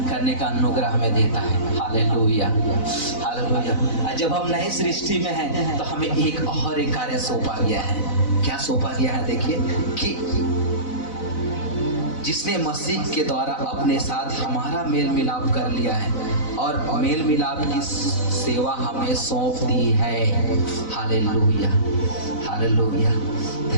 करने का अनुग्रह हमें देता है। Hallelujah, hallelujah. जब हम नई सृष्टि में हैं तो हमें एक और एक कार्य सौंपा गया है। क्या सौंपा गया है? देखिए कि जिसने मसीह के द्वारा अपने साथ हमारा मेल मिलाप कर लिया है और मेल मिलाप की सेवा हमें सौंप दी है। Hallelujah, hallelujah.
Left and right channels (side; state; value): right; late; 4.0 ms